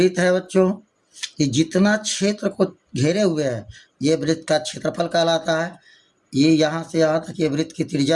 है बच्चों, ये जितना क्षेत्र को घेरे हुए है ये वृत्त का क्षेत्रफल कहलाता है। ये यहाँ से यहाँ तक ये वृत्त की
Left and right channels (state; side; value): identical; both; correlation 1.00